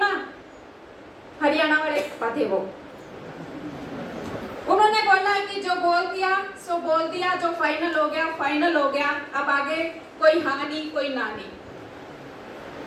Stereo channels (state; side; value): identical; both; correlation 1.00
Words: हरियाणा वाले पापा थे वो। उन्होंने बोला कि जो बोल दिया सो बोल दिया, जो फाइनल हो गया फाइनल हो गया, अब आगे कोई हाँ नहीं कोई ना नहीं।